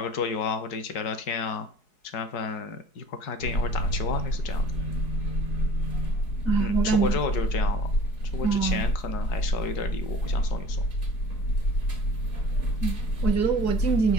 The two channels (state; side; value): late; right; 4.7 ms